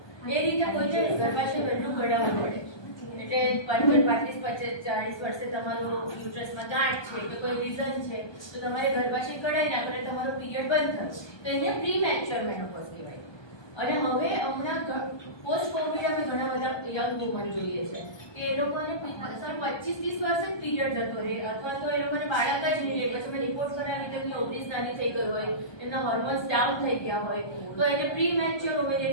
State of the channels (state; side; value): late; right; 1.2 ms